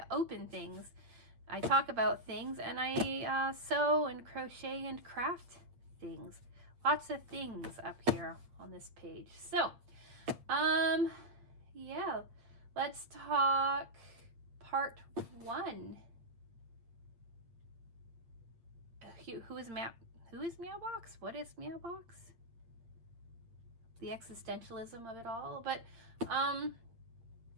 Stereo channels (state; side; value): late; left; 8.5 ms